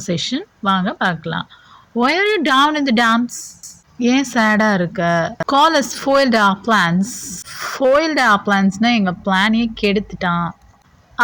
வாங்க பார்க்கலாம். Why are you down in the dumps? ஏன் சேடா இருக்க? Call us foiled our plans. Foiled our plansனா எங்க பிளானையே கெடுத்துட்டான்.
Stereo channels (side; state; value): both; identical; correlation 1.00